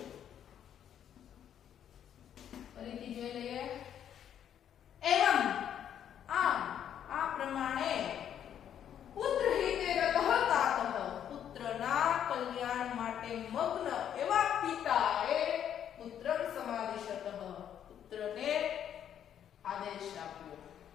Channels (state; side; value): quieter; right; 9.6 dB